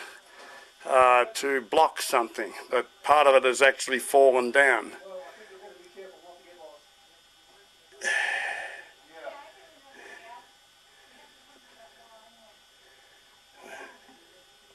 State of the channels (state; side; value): identical; both; correlation 1.00